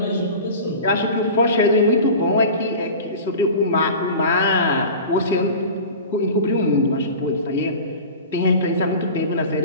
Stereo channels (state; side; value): inverted; both; correlation -0.35